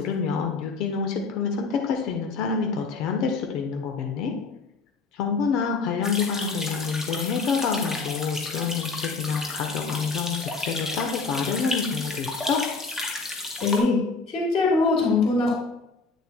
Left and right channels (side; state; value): right; quieter; 4.3 dB